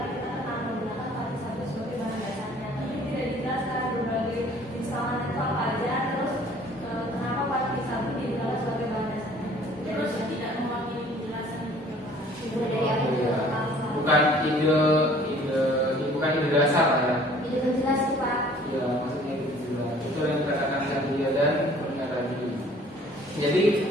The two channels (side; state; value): both; normal; correlation 0.53